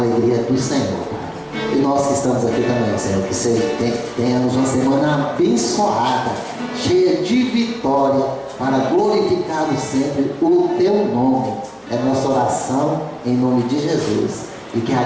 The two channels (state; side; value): identical; both; correlation 1.00